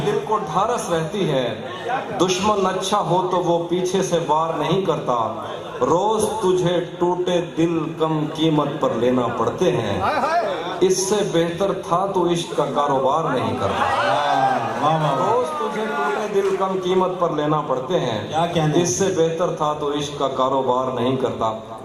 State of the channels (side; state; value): both; identical; correlation 1.00